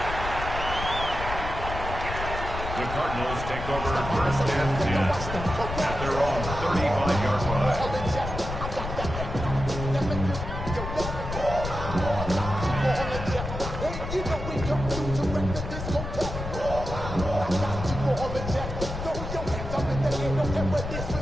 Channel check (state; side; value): noise; left; rumble, 6 dB below the sound